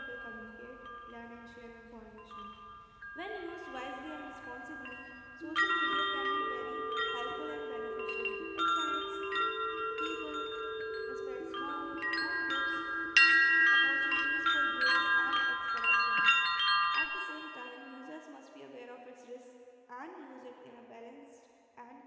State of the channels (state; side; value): identical; both; correlation 1.00